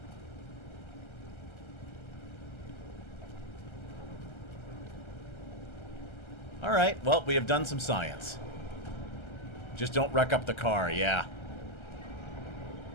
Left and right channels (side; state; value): right; late; 1.3 ms